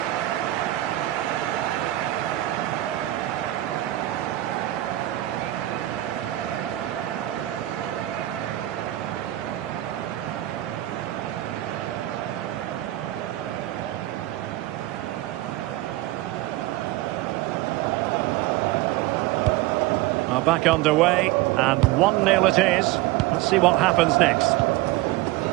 Back underway, and 1-0 it is. Let's see what happens next.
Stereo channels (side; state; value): left; quieter; 16.6 dB